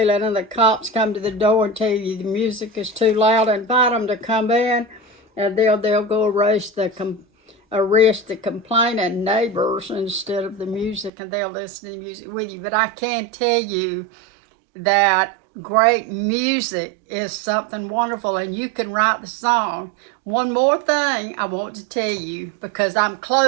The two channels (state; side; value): drops out; left; at 11.1 s